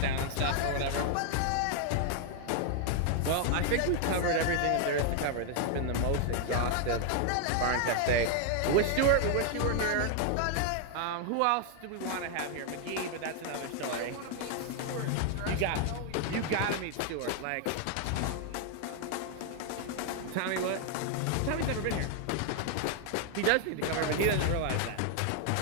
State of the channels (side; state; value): both; different; correlation 0.00